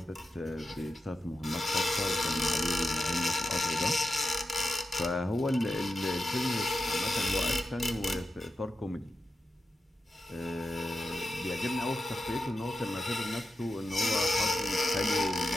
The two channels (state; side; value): normal; both; correlation 0.91